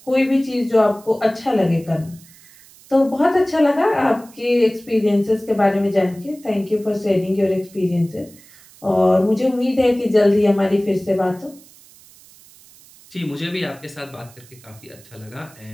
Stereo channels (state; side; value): noise; right; hiss, 24 dB below the sound